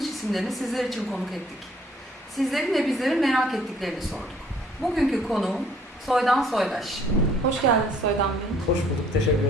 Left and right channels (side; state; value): both; normal; correlation 0.60